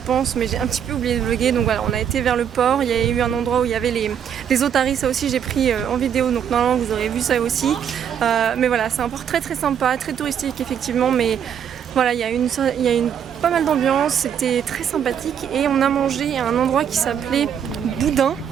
mais j'ai un petit peu oublié de vlogger. Donc voilà, on a été vers le port, il y a eu un endroit où il y avait les otaries, ça aussi j'ai pris en vidéo, donc normalement vous aurez vu ça aussi. Mais voilà, c'est un port très sympa, très touristique effectivement, mais voilà, il y a pas mal d'ambiance, c'était très sympathique et on a mangé à un endroit qui s'appelait Boudin,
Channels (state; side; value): quieter; left; 8.6 dB